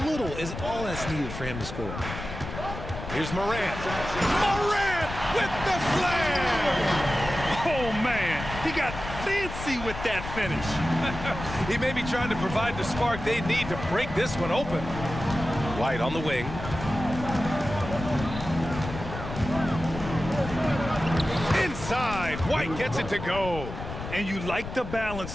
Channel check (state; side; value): noise; left; rumble, 9 dB below the sound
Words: little, is all that's needed for him to score. Here's Morant. Morant with the slam! Oh, man, he got fancy with that finish. He may be trying to provide the spark they need to break this one open. White on the wing. Inside, White gets it to go. And you like the